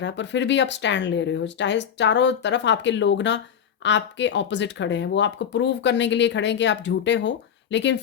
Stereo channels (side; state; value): right; quieter; 8.2 dB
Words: पर फिर भी आप स्टैंड ले रहे हो, चाहे चारों तरफ आपके लोग ना आपके ऑपोजिट खड़े हैं, वो आपको प्रूव करने के लिए खड़े हैं कि आप झूठे हो, लेकिन